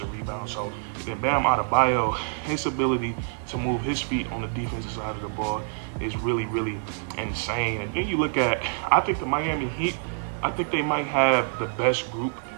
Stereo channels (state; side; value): silent; left; 61 dB below the other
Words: rebounds. So then Bam Adebayo, his ability to move his feet on the defensive side of the ball is really insane. And then you look at, I think the Miami Heat, I think they might have the best group